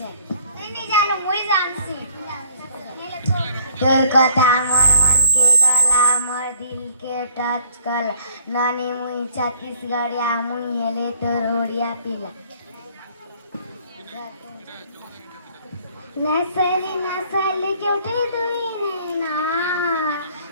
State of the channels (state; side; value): inverted; both; correlation -0.58